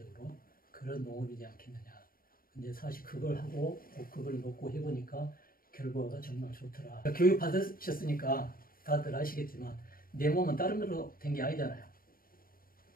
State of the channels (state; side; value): late; right; 0.42 ms